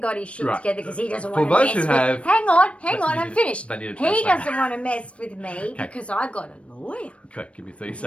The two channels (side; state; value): right; late; 0.061 ms